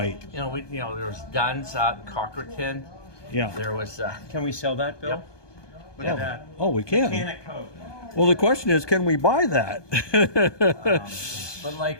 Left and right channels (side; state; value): right; late; 1.2 ms